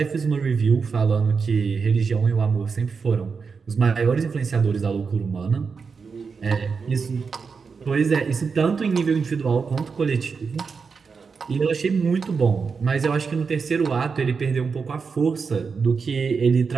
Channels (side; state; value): left; quieter; 5.3 dB